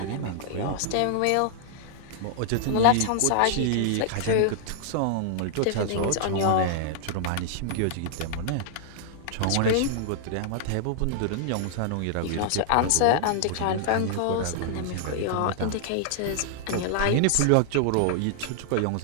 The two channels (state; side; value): different; both; correlation -0.01